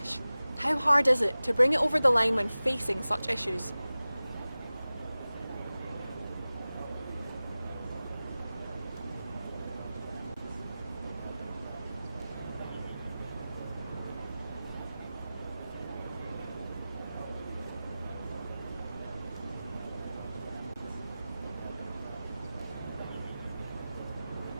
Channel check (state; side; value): inverted; both; correlation -0.97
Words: How hard is it to bring it over the line when facing such issues?